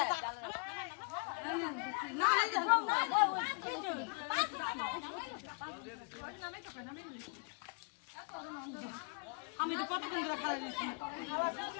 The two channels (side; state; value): right; quieter; 37.3 dB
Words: আমি তো কতক্ষণ ধরে খাওয়া দিচ্ছি